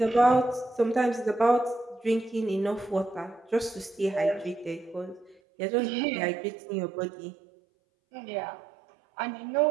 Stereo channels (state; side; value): drops out; left; at 5.4 s